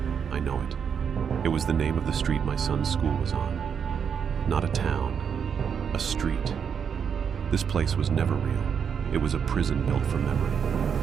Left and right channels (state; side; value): quieter; left; 7.2 dB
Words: I know it. It was the name of the street my son's school was on. Not a town, a street. This place was never real. It was a prison built for memory.